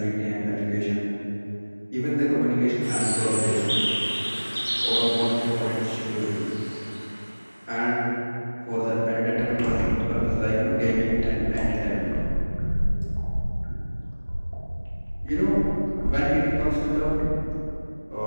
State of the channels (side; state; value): both; inverted; correlation -1.00